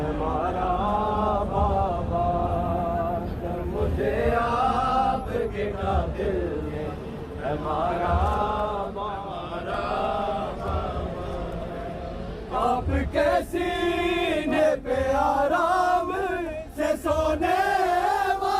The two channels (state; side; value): identical; both; correlation 1.00